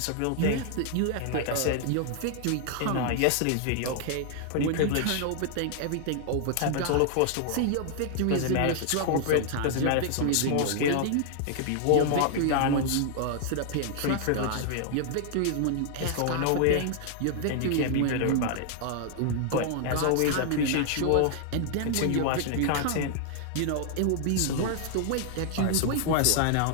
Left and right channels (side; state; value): both; different; correlation 0.00